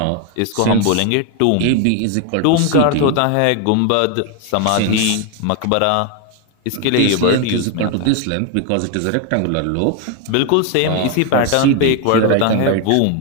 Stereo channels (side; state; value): both; different; correlation 0.01